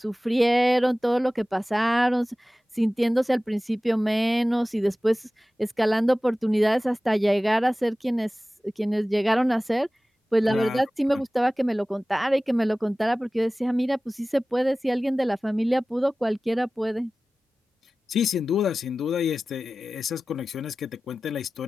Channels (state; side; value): normal; both; correlation 0.97